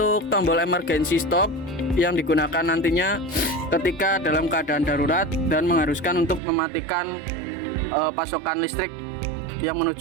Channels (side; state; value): left; drops out; at 6.4 s